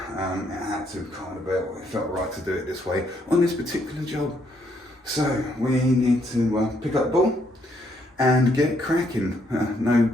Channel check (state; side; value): normal; both; correlation 0.72